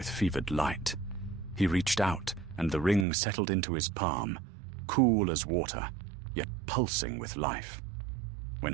fevered light. He reached out, and the ring settled into his palm, cool as water, yet pulsing with life. When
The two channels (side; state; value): left; drops out; at 3.1 s